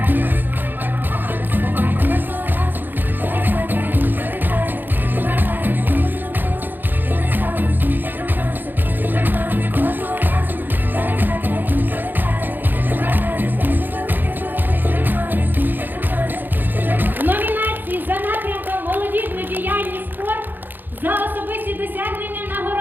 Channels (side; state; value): left; late; 0.090 ms